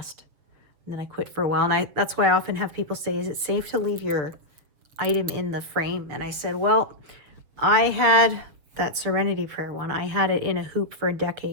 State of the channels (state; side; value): late; left; 7.3 ms